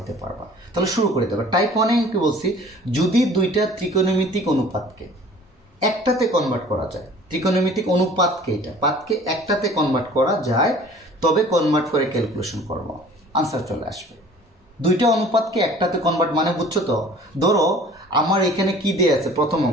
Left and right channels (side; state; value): both; normal; correlation 0.48